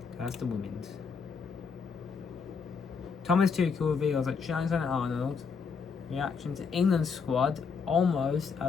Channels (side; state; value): right; quieter; 5.6 dB